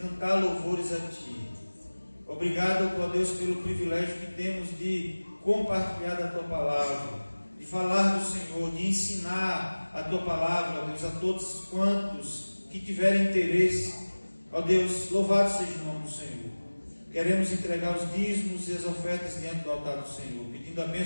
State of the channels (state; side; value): inverted; both; correlation -1.00